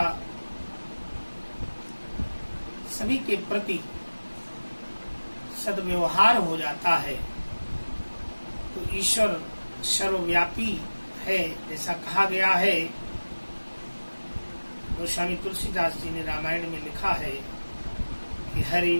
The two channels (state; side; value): inverted; both; correlation -1.00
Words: सभी के प्रति सद्व्यवहार हो जाता है तो ईश्वर सर्वव्यापी है। जैसा कहा गया है, गोस्वामी तुलसीदास जी ने रामायण में लिखा है कि हरि